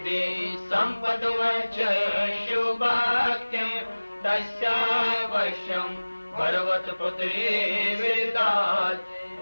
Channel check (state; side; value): inverted; both; correlation -1.00